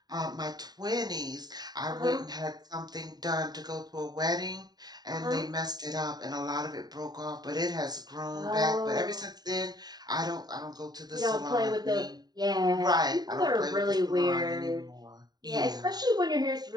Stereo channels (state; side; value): late; left; 0.20 ms